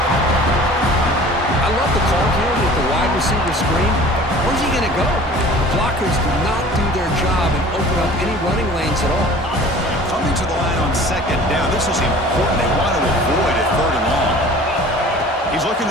I love the call here with the wide receiver screen. Where's he going to go? The blockers do not do their job and open up any running lanes at all. Coming to the line on 2nd down. This is important. They want to avoid a 3rd and long. He's looking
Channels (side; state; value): both; normal; correlation 0.45